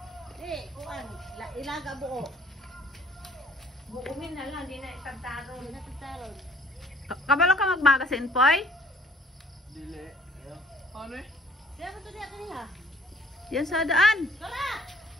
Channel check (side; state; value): both; normal; correlation 0.58